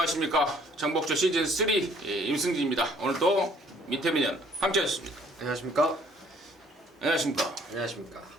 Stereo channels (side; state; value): both; normal; correlation 0.60